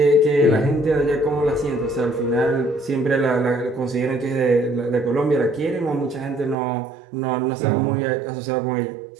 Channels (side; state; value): left; drops out; at 6.6 s